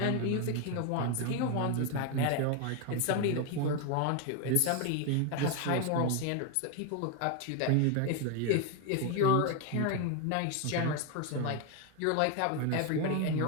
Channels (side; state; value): both; different; correlation 0.01